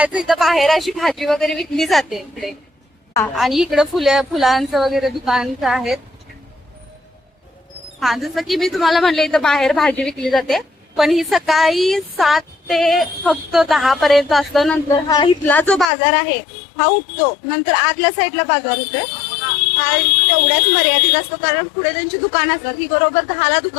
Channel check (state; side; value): drops out; right; at 15.9 s